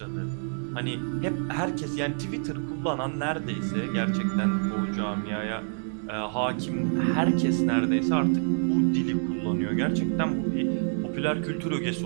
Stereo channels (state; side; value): silent; left; digital silence